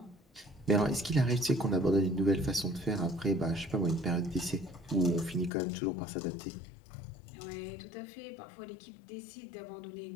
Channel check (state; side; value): drops out; right; at 5.5 s